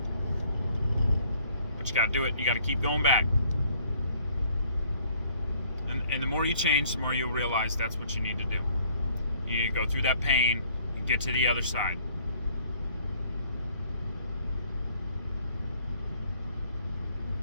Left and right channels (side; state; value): both; inverted; correlation -0.61